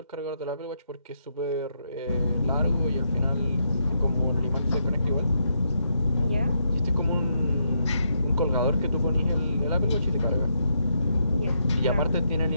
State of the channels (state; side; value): inverted; both; correlation -0.79